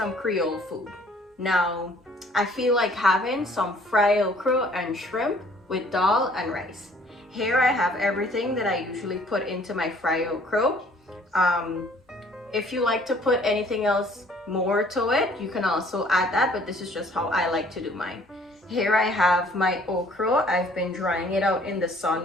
Creole food. Now I feel like having some fried okra and shrimp with dal and rice. Here I have everything that I usually put into my fried okra. If you like to put anything else more to it, you can also add that, but this is just how I like to do mine. Here I have my okra. I've been drying it out in the sun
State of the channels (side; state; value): both; normal; correlation 0.57